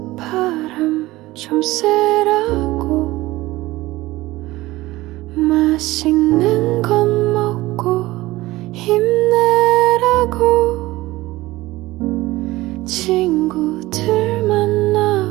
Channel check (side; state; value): left; quieter; 18.6 dB